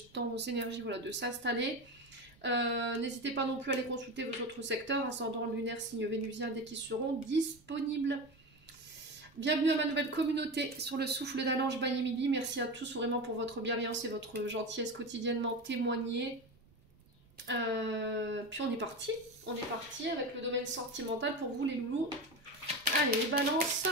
temps aux énergies de s'installer. N'hésitez pas non plus à aller consulter vos autres secteurs, ascendant lunaire, signe vénusien, dès qu'ils seront disponibles. Bienvenue à ma nouvelle communauté sur le souffle d'un ange by Emily. Merci à tous vraiment pour votre bienveillance et votre gentillesse quotidiennement témoignée. Puis on est parti avec le domaine sentimental pour vous les loulous. Allez, les balances.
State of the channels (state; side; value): noise; right; rumble, 29 dB below the sound